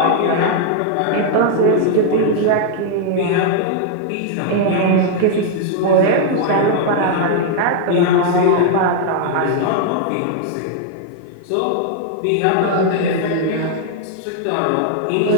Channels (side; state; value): both; different; correlation 0.00